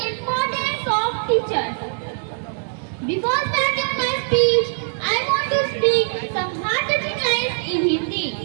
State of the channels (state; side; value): silent; left; 64 dB below the other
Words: importance of teachers. Before starting my speech, I want to speak some heart-touching lines in Hindi.